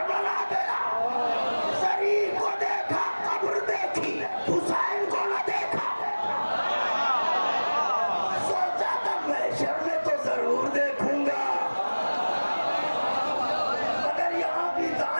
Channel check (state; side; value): inverted; both; correlation -1.00